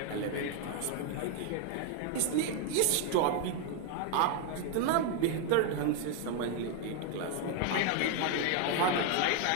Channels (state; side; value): different; both; correlation 0.01